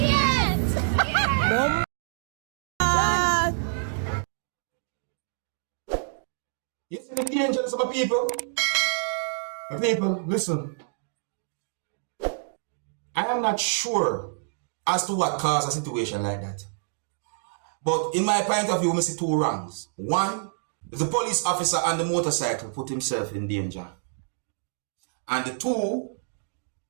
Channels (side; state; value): left; silent; digital silence